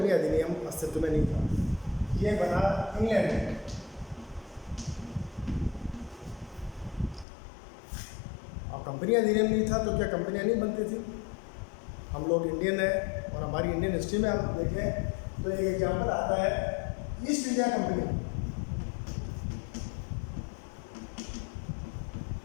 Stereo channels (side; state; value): right; drops out; at 7.2 s